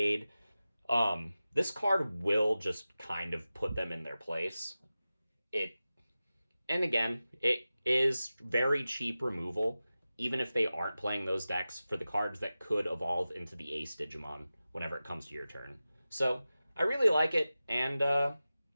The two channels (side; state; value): both; inverted; correlation -0.95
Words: this card will just kind of put them in their place. And again, it is very cheap removal, even if they aren't playing those decks, for the cards that could evolve into the Ace Digimon whenever it comes to your turn. So, I really like it, and